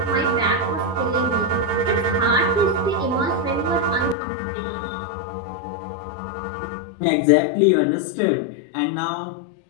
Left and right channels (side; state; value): right; drops out; at 4.2 s